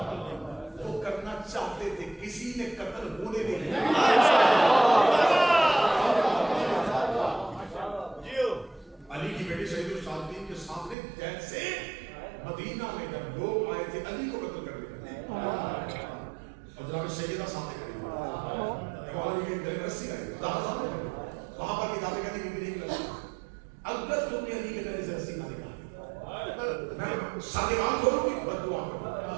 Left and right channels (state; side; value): drops out; left; at 11.0 s